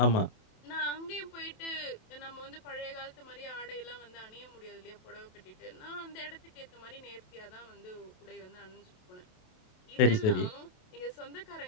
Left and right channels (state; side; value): late; right; 27 ms